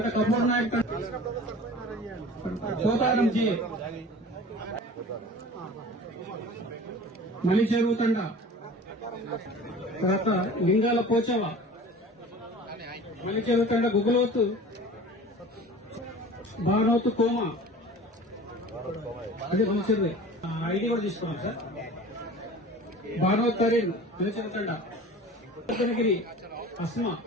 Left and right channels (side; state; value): both; normal; correlation 0.41